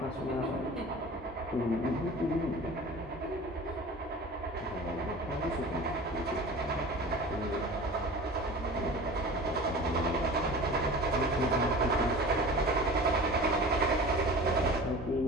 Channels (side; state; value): both; normal; correlation 0.38